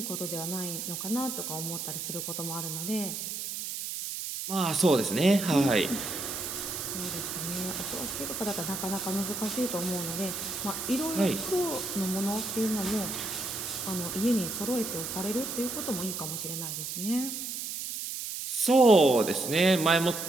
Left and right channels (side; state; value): right; noise; hiss, 5 dB below the sound